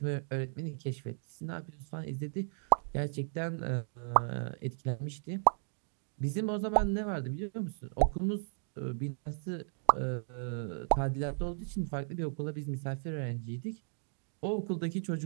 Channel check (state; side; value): silent; left; digital silence